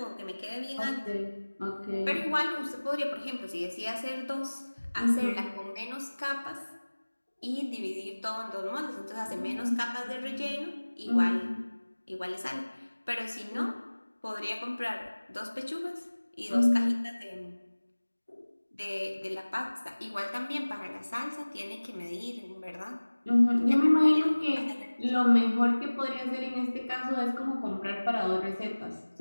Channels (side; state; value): both; inverted; correlation -1.00